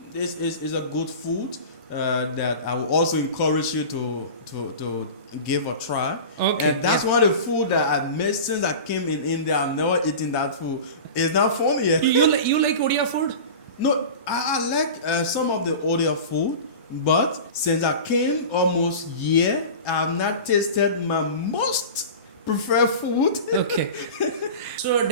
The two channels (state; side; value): inverted; both; correlation -0.33